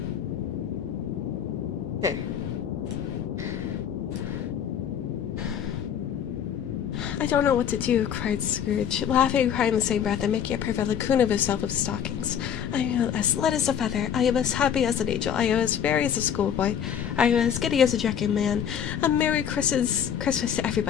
There. I don't know what to do, cried Scrooge, laughing and crying in the same breath and making a perfect lacoon of himself with stockings. I am as light as a feather. I am as happy as an angel. I am as merry as a schoolboy. I am as giddy as a drunken man. A Merry Christmas to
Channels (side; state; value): right; quieter; 8.7 dB